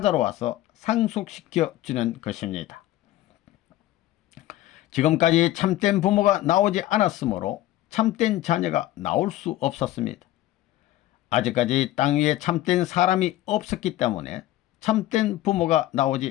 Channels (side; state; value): right; quieter; 15.0 dB